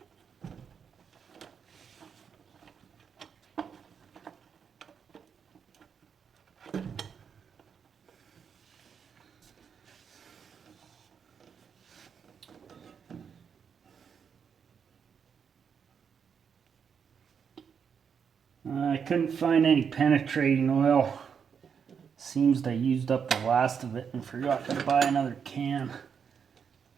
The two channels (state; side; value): quieter; left; 6.9 dB